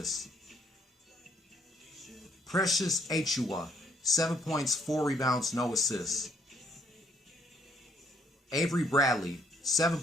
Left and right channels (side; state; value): both; normal; correlation 0.65